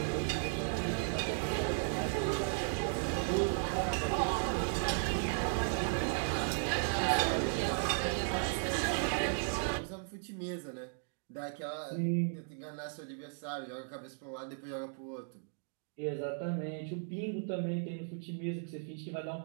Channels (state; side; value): silent; left; digital silence